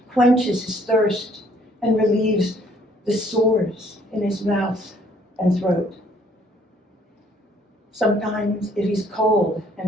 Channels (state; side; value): normal; both; correlation 0.62